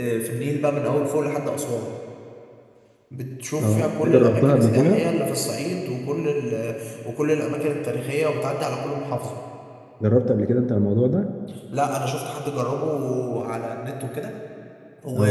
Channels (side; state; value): both; identical; correlation 1.00